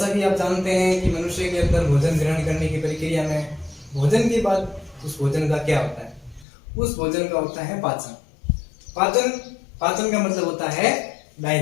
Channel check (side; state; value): right; drops out; at 6.5 s